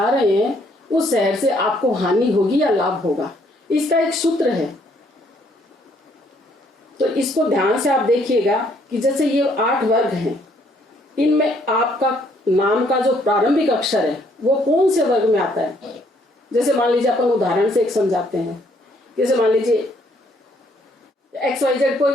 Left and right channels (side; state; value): both; normal; correlation 0.67